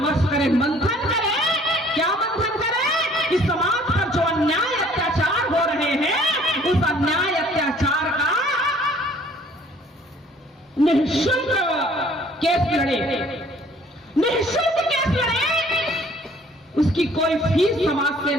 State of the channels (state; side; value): normal; both; correlation 0.57